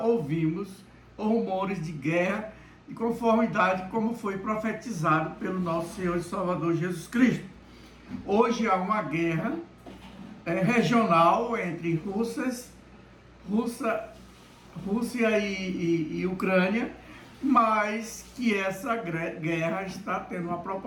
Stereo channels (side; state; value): both; identical; correlation 1.00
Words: rumores de guerra de conformidade como foi profetizado pelo nosso Senhor e Salvador Jesus Cristo. Hoje há uma guerra regional entre Rússia e Ucrânia, mas que essa guerra está tendo uma